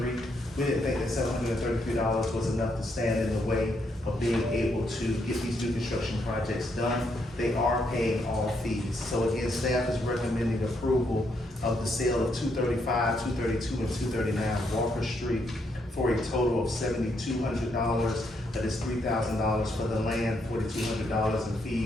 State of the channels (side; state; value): both; normal; correlation 0.76